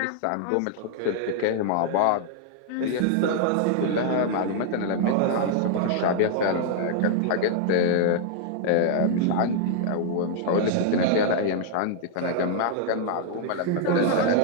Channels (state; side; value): different; both; correlation -0.01